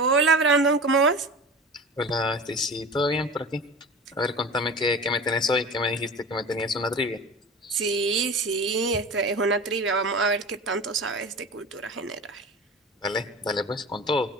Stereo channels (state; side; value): normal; both; correlation 0.33